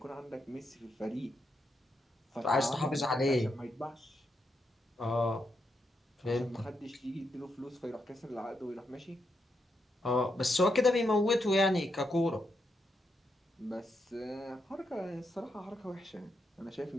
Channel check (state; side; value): normal; both; correlation 0.82